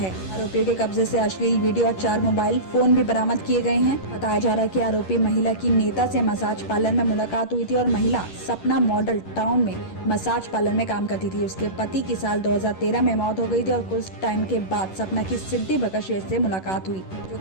आरोपियों के कब्जे से अश्लील वीडियो और 4 मोबाइल फोन भी बरामद किए गए हैं। बताया जा रहा है कि आरोपी महिला की नेता से मसाज पार्लर में मुलाकात हुई थी और महिला सपना मॉडल टाउन में मसाज पार्लर में काम करती थी। उसके पति की साल 2013 में मौत हो गई थी और कुछ टाइम के बाद सपना की सिद्धि भगत श्रेष्ठ से मुलाकात हुई, जो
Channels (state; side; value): late; right; 11 ms